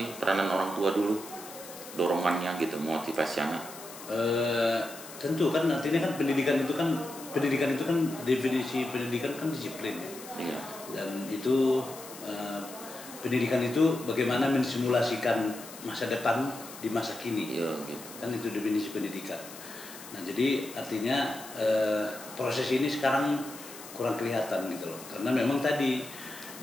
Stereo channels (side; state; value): left; noise; hiss, 15 dB below the sound